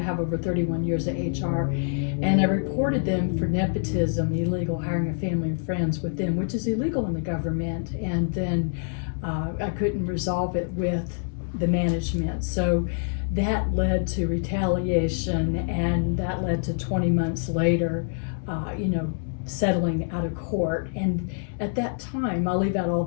have over 31 years of HR, and I reported them for nepotism, illegal hiring of family and friends with them, which is illegal in the government. And then I couldn't resolve it with the management. So that led to retaliation, and that led to 20 months later, settling out of court. And at that time, I'll leave out all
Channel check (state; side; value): silent; right; digital silence